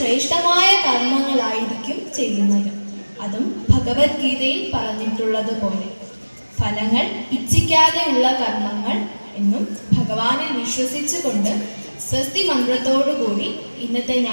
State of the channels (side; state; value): both; inverted; correlation -1.00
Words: കർമ്മങ്ങളായിരിക്കും ചെയ്യുന്നത്. അതും ഭഗവത്ഗീതയിൽ പറഞ്ഞിട്ടുള്ളതുപോലെ ഫലങ്ങൾ ഇച്ഛിക്കാതെയുള്ള കർമ്മങ്ങൾ എന്നും ഭഗവാനിൽ വിശ്വസിച്ചുകൊണ്ട് സ്വസ്തി മന്ത്രത്തോടുകൂടി ഇന്നത്തെ